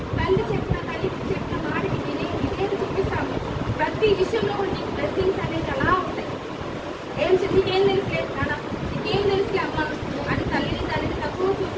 తల్లికి చెప్పిన మాటకి విధేయత చూపిస్తాము, ప్రతి విషయంలో కూడా నీకు బ్లెస్సింగ్స్ అనేది అలా ఉంటాయి. నీకేం తెలుసులే నాన్న, నీకేం తెలుసులే అమ్మ అని తల్లిని తక్కువ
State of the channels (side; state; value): both; identical; correlation 1.00